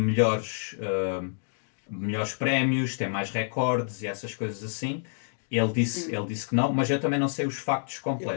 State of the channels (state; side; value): silent; right; digital silence